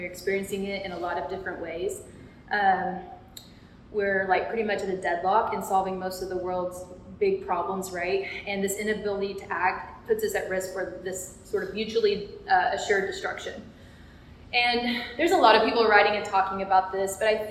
experiencing it in a lot of different ways. We're like pretty much at a deadlock in solving most of the world's big problems, right? And this inability to act puts us at risk for this sort of mutually assured destruction. And there's a lot of people writing and talking about this, but I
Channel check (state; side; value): identical; both; correlation 1.00